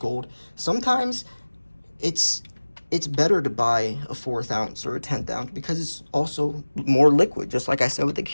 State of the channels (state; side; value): inverted; both; correlation -1.00